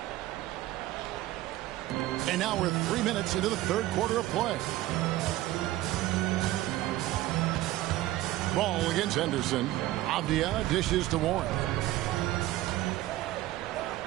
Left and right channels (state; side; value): quieter; left; 15.8 dB